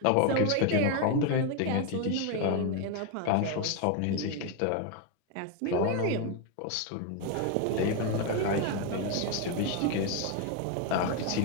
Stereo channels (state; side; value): different; both; correlation 0.01